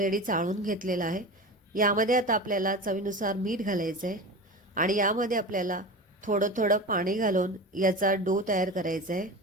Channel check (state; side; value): normal; both; correlation 0.30